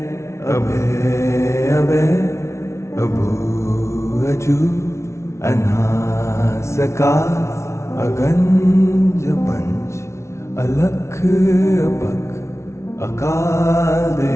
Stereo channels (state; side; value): late; right; 0.13 ms